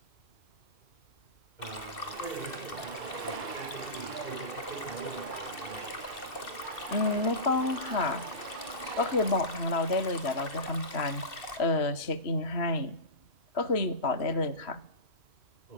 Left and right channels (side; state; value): right; late; 2.7 ms